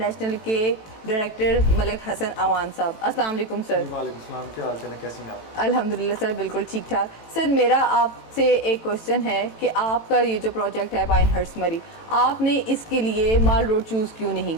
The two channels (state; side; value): late; right; 18 ms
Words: के डायरेक्टर मलिक हसन अवान साहब। अस्सलाम वालेकुम सर। वालेकुम सलाम, क्या हाल चाल है, कैसे हैं आप? अल्हम्दुलिल्लाह सर, बिल्कुल ठीक ठाक। सर मेरा आपसे एक क्वेश्चन है कि आपका ये जो प्रोजेक्ट है पाइनहर्स्ट मरी, आपने इसके लिए माल रोड चूज़ क्यों नहीं